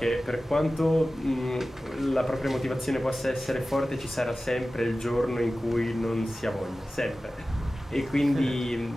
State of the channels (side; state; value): both; normal; correlation 0.95